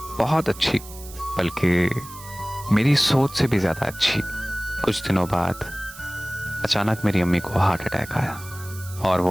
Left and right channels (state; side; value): noise; right; hiss, 16 dB below the sound